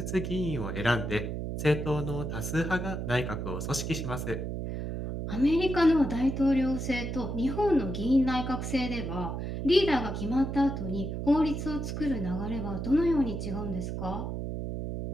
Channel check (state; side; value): noise; right; hum, 4 dB below the sound